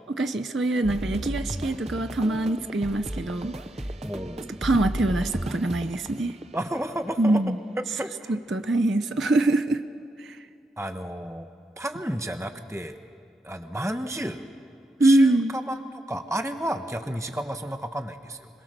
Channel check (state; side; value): normal; both; correlation 0.82